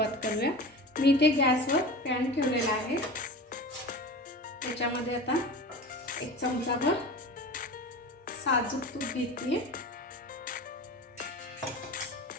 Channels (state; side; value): normal; both; correlation 0.33